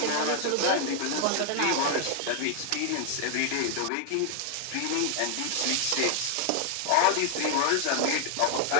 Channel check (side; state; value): both; different; correlation 0.00